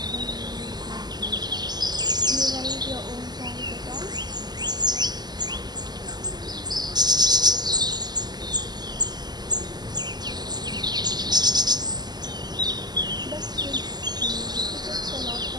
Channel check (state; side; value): late; left; 0.20 ms